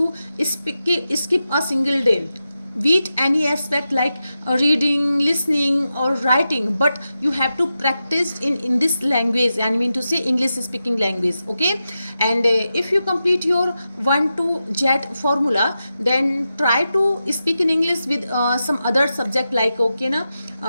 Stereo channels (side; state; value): both; inverted; correlation -0.90